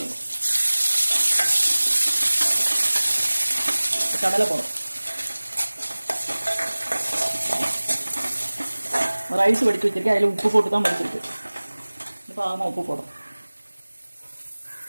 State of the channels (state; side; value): inverted; both; correlation -1.00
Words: போடும். கடலை போடும். ரைஸ் வடித்து வச்சிருக்கேன். அதில் உப்பு போட்டு தான் வடிச்சிருக்கு. இப்போ ஆமாம் உப்பு போடும்.